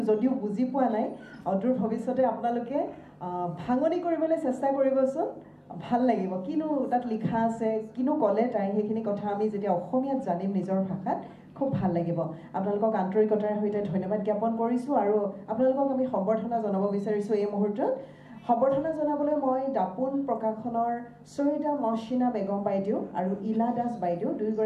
যদিও বুজি পোৱা নাই অদূৰ ভৱিষ্যতে আপোনালোকে ভাঙনি কৰিবলৈ চেষ্টা কৰিবচোন ভাল লাগিব কিনো তাত লিখা আছে কিনো ক'লে তাই সেইখিনি কথা আমি যেতিয়া অসমীয়াত জানিম নিজৰ ভাষাত খুব ভাল লাগিব আপোনালোকক আন্তৰিকতাৰ সৈতে ধন্যবাদ জ্ঞাপন কৰিছোঁ আৰু আপোনালোকক আমি সম্বৰ্ধনা জনাব বিচাৰিছোঁ এই মুহূৰ্তত সম্বৰ্ধনা জনাবলৈ মই দাপোন প্ৰকাশনৰ সৈয়দা মহচিনা বেগম বাইদেউ আৰু ইলা দাস বাইদেউ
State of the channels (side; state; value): both; identical; correlation 1.00